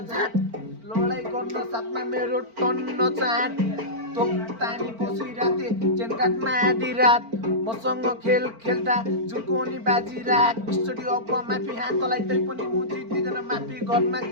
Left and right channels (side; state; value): left; late; 4.4 ms